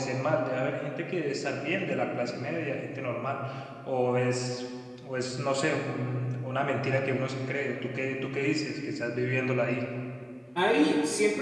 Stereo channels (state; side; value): identical; both; correlation 1.00